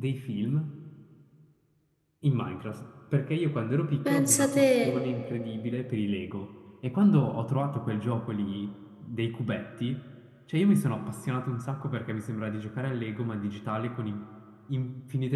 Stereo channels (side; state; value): both; identical; correlation 1.00